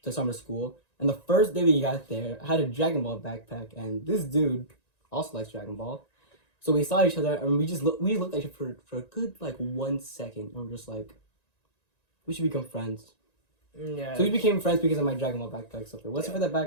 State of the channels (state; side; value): late; right; 1.9 ms